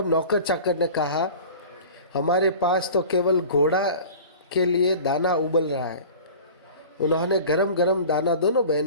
नौकर चाकर ने कहा, हमारे पास तो केवल घोड़ा के लिए दाना उबल रहा है। उन्होंने गरम गरम दाना दोनों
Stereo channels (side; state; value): both; inverted; correlation -0.40